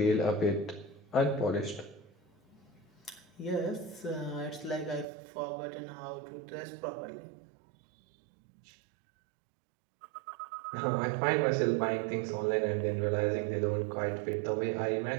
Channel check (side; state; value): left; drops out; at 5.1 s